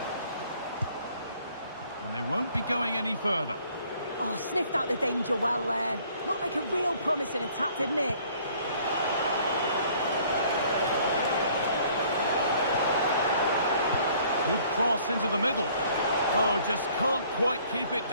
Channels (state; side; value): inverted; both; correlation -0.58